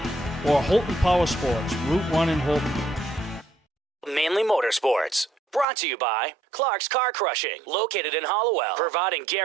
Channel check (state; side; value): drops out; left; at 5.7 s